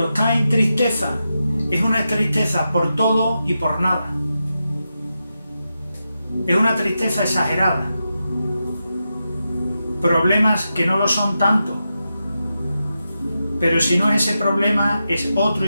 está en tristeza, es una tristeza por todo y por nada. Es una tristeza exagerada. Problemas que no lo son tanto. Pero si no es ese problema, es otro,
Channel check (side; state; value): both; inverted; correlation -0.89